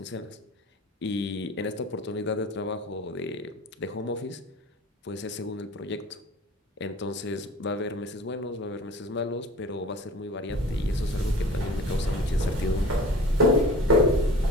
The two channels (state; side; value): normal; both; correlation 0.42